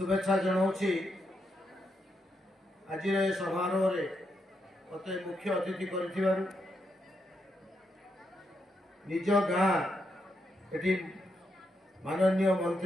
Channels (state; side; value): normal; both; correlation 0.81